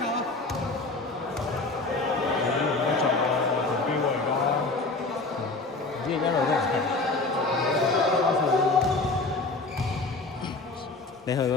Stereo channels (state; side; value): quieter; right; 3.4 dB